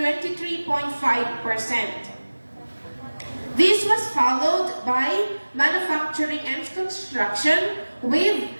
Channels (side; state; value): both; inverted; correlation -1.00